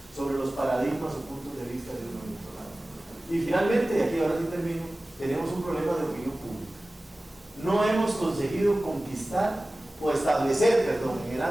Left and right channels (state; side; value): normal; both; correlation 0.97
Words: sobre los paradigmas o puntos de vista de uno y otro lado. Y finalmente, y aquí ahora sí termino, tenemos un problema de opinión pública. No hemos conseguido conquistar o establecer, en el